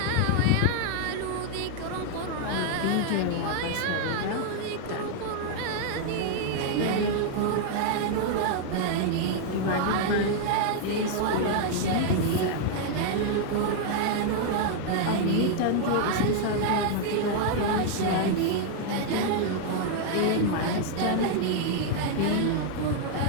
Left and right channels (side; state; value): both; different; correlation 0.00